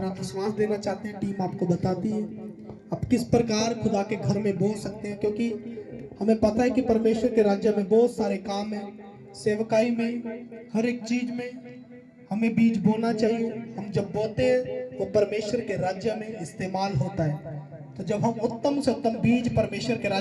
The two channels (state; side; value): identical; both; correlation 1.00